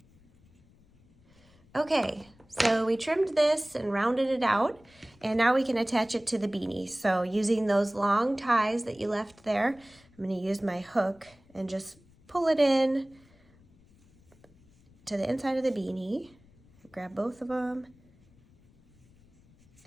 Okay, so we trimmed this and rounded it out, and now we can attach it to the beanie. So using those long ties that you left there, I'm going to use my hook and just pull it in to the inside of the beanie. Grab both of them,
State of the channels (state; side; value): noise; left; rumble, 29 dB below the sound